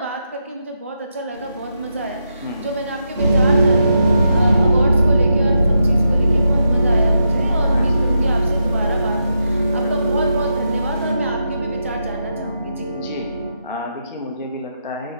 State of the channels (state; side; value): inverted; both; correlation -0.84